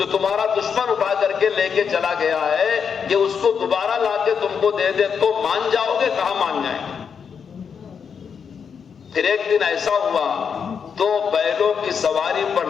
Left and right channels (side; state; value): right; quieter; 6.7 dB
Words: تمہارا دشمن اٹھا کر کے لے کے چلا گیا ہے، کہ اس کو دوبارہ لا کے تم کو دے دے تو مان جاؤ گے؟ کہاں مان جائیں گے. پھر ایک دن ایسا ہوا، 2 بیلوں کی سواری پر